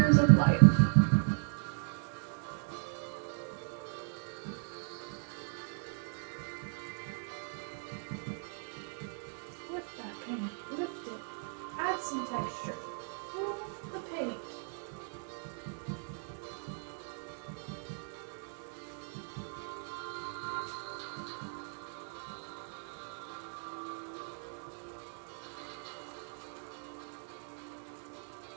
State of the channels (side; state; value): left; silent; 53 dB below the other